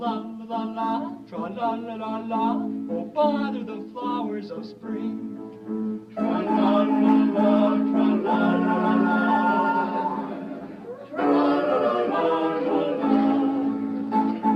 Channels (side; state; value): both; identical; correlation 1.00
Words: tra-la-la-la-la, oh, bother the flowers of spring. Tra-la-la-la, tra-la-la-la.